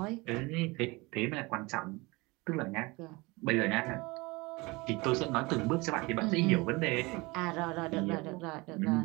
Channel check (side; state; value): left; quieter; 24.2 dB